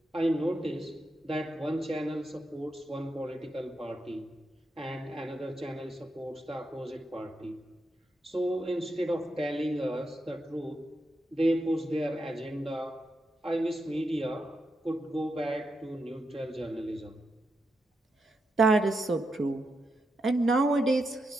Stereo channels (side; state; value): both; normal; correlation 0.85